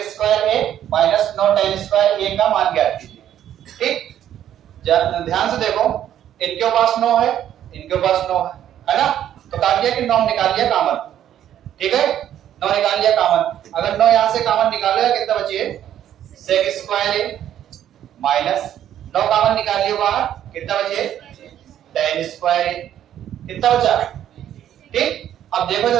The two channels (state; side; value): quieter; left; 10.9 dB